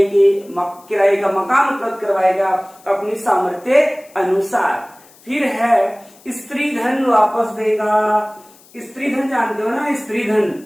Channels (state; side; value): noise; left; hiss, 26 dB below the sound